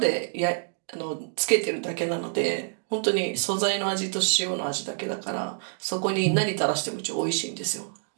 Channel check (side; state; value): left; silent; digital silence